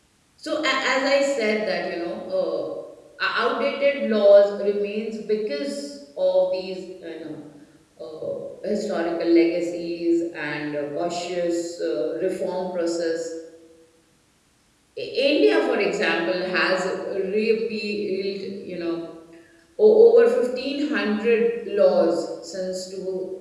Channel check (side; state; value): both; identical; correlation 1.00